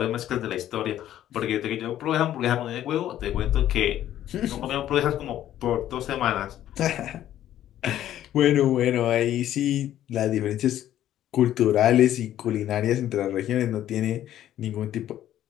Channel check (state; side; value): quieter; right; 12.1 dB